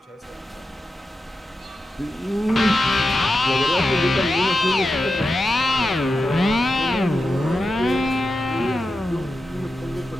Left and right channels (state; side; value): normal; both; correlation 0.90